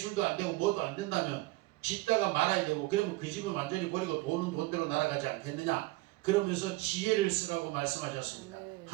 안 되고 뭐도 안 된다면 짓다가 말아야 되고, 그러면 그 집을 완전히 버리고 돈은 돈대로 날아가지 않겠느냐. 그러면서 지혜를 쓰라고 말씀하셨습니다.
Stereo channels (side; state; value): left; quieter; 21.0 dB